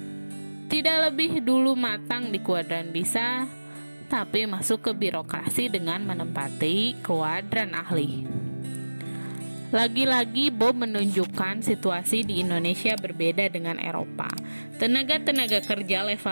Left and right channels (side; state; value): both; inverted; correlation -1.00